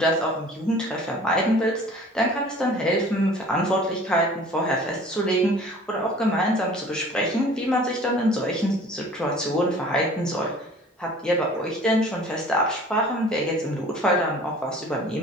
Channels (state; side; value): normal; both; correlation 0.48